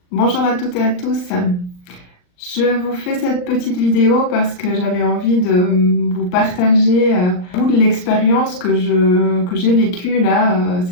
Bonjour à toutes et à tous. Je vous fais cette petite vidéo parce que j'avais envie de vous partager un bout de l'expérience que j'ai vécue là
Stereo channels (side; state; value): right; late; 39 ms